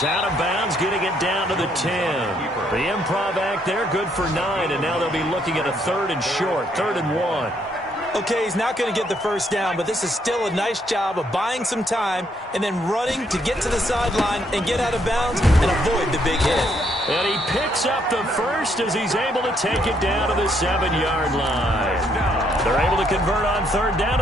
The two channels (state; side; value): normal; both; correlation 0.71